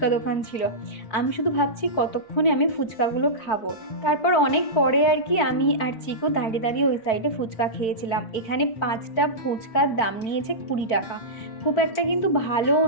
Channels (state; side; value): late; right; 4.5 ms